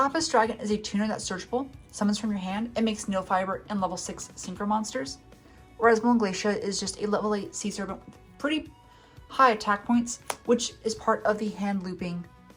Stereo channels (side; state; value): both; identical; correlation 1.00